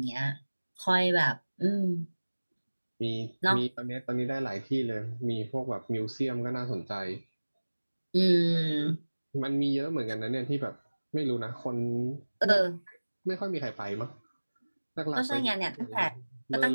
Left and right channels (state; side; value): inverted; both; correlation -1.00